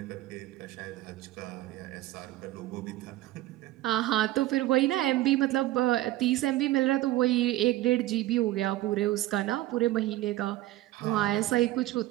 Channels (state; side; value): quieter; left; 16.1 dB